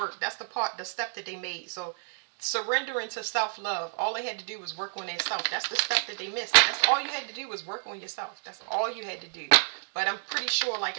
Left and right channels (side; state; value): left; silent; digital silence